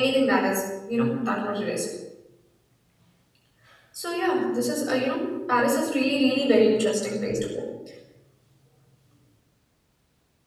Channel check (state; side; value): identical; both; correlation 1.00